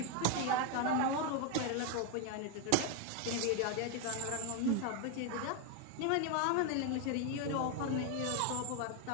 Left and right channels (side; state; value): both; different; correlation 0.01